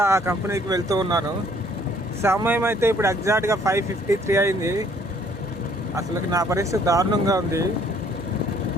ఆ కంపెనీకి వెళ్తూ ఉన్నాను. సమయం అయితే ఇప్పుడు ఎగ్జాక్ట్గా 5:53 అయింది. అసలు నా పరిస్థితి దారుణంగా ఉంది.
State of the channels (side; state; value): both; normal; correlation 0.61